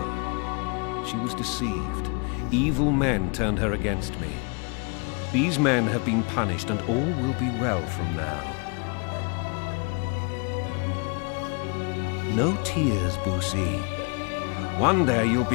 She was deceived. Evil men turned her against me. These men have been punished, and all will be well from now. No tears, Boosie. One day you'll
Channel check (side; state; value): right; quieter; 33.9 dB